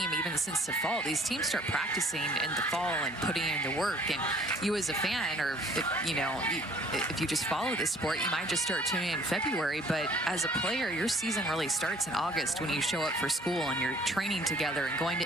even since the fall. These teams start practicing in the fall and putting in the work. And you as a fan, or if you just follow this sport, you might just start tuning in February. But as a player, your season really starts in August when you show up for school and you're training together and going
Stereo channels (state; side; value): normal; both; correlation 0.57